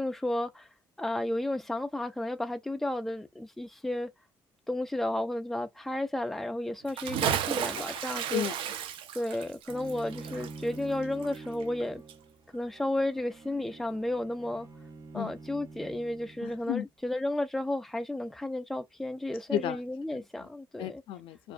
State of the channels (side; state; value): both; normal; correlation 0.79